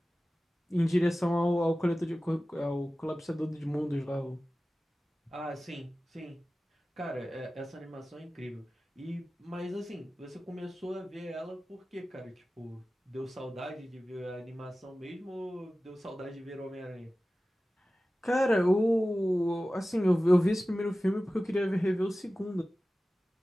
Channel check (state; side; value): normal; both; correlation 0.96